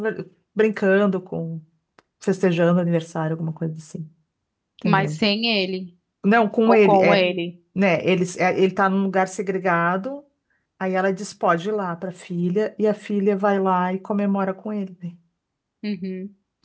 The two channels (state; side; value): identical; both; correlation 1.00